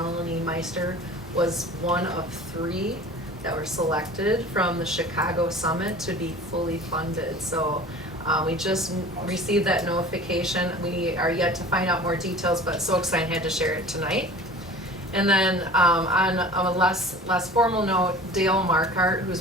Meister was one of 3 that were selected from the Chicago Summit to be fully funded. So we just received that notification. We are yet to find out more details, but so excited I had to share it tonight. And then on a less formal note, Dale Markart,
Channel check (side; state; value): both; normal; correlation 0.42